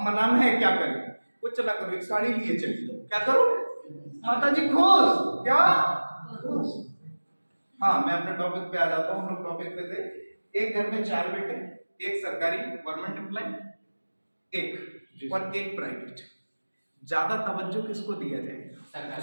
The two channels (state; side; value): inverted; both; correlation -1.00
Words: मनाना है, क्या करें? कुछ ना करो, एक साड़ी लिए चली जाओ, क्या करो? माता जी खुश, क्या? हाँ, मैं अपने टॉपिक पे आ जाता हूँ। हम लोग टॉपिक पे थे, एक घर में 4 बेटे, एक सरकारी गवर्नमेंट एम्प्लॉय, एक और एक प्राइवेट। ज्यादा तवज्जो किसको दिया जाए?